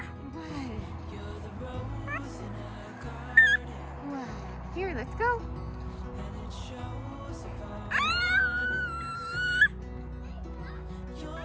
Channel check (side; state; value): both; identical; correlation 1.00